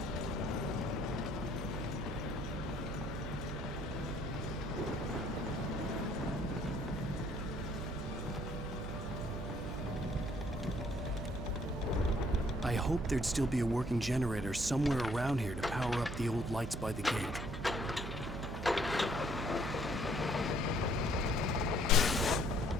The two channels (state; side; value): noise; right; hum, 7 dB below the sound